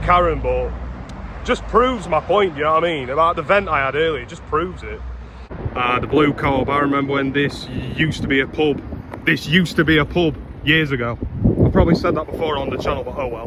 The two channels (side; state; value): both; identical; correlation 1.00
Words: but just proves my point, you know what I mean? About the vent I had earlier, it just proves it. The Blue Co-op, I remember when this used to be a pub. This used to be a pub years ago. I've probably said that before on the channel, but oh